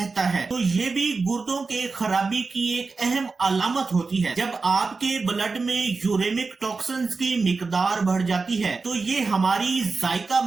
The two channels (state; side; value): quieter; left; 4.2 dB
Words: है, तो ये भी गुर्दों के खराबी की एक अहम अलामत होती है। जब आपके ब्लड में यूरेमिक टॉक्सिन्स की मिकदार बढ़ जाती है, तो ये हमारी जायका